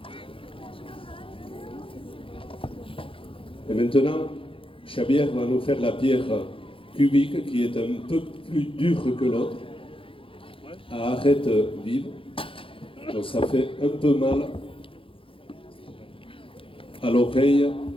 Et maintenant, Xavier va nous faire la pierre cubique qui est un peu plus dure que l'autre, à arête vive. Donc ça fait un peu mal à l'oreille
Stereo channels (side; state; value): right; late; 0.26 ms